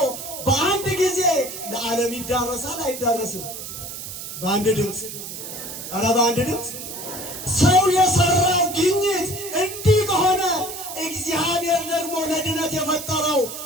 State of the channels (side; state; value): right; noise; hiss, 9 dB below the sound